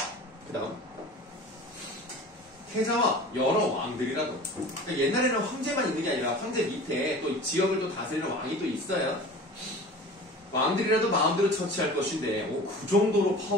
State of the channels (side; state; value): both; normal; correlation 0.39